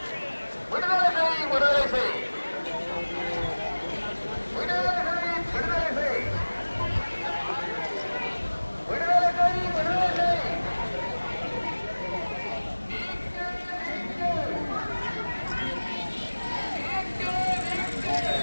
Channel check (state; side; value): inverted; both; correlation -1.00